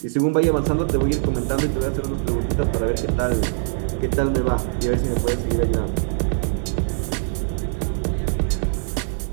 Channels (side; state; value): left; silent; digital silence